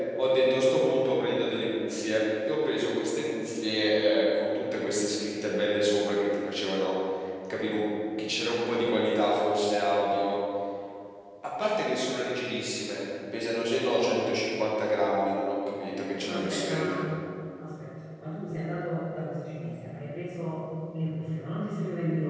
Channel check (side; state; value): both; identical; correlation 1.00